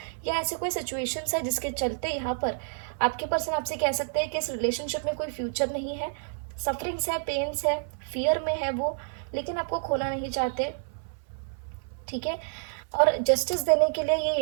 या ऐसे कोई सिचुएशंस है जिसके चलते यहाँ पर आपके पर्सन आपसे कह सकते हैं कि इस रिलेशनशिप में कोई फ्यूचर नहीं है, सफरिंग्स है, पेन्स है, फियर में है वो, लेकिन आपको खोना नहीं चाहते। ठीक है, और जस्टिस देने के लिए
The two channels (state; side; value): silent; left; 59 dB below the other